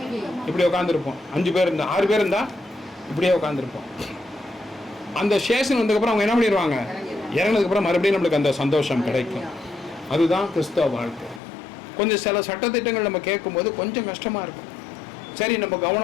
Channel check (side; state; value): right; drops out; at 11.4 s